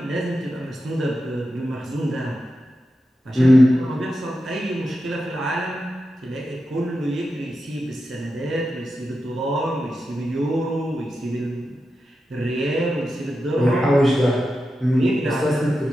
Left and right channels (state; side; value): normal; both; correlation 0.90